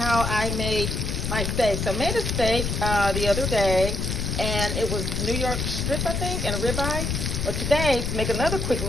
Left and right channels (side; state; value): left; noise; rumble, 1 dB below the sound